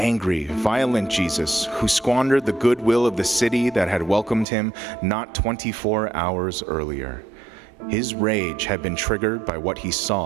violent Jesus who squandered the goodwill of the city that had welcomed him not 24 hours earlier. His rage had been triggered by what he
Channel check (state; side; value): drops out; left; at 4.5 s